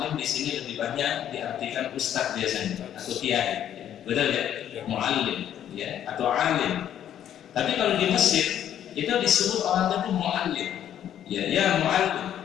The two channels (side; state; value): right; quieter; 10.5 dB